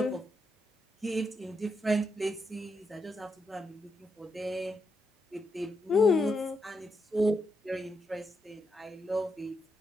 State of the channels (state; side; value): normal; both; correlation 0.83